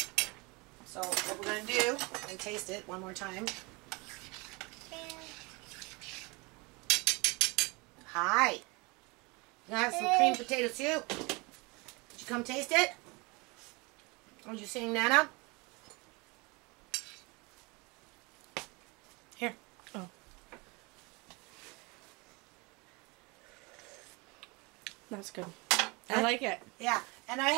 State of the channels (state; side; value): quieter; left; 27.4 dB